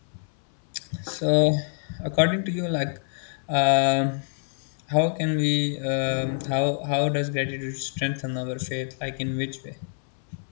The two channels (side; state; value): right; silent; 60 dB below the other